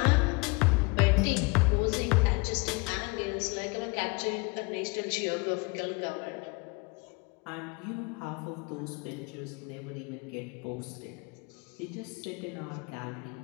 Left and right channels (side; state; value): right; quieter; 27.7 dB